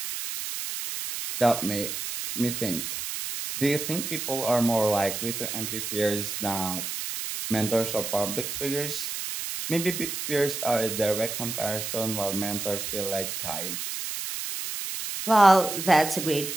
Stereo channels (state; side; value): noise; right; hiss, 5 dB below the sound